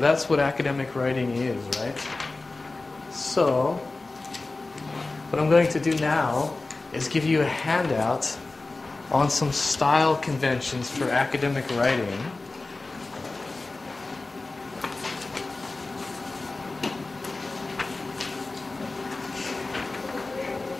what academic writing is, right? So what I'm going to do now is give you a handout on some style conventions for academic writing.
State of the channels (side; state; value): right; quieter; 3.4 dB